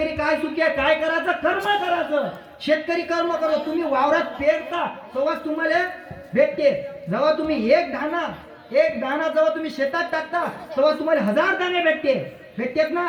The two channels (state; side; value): identical; both; correlation 1.00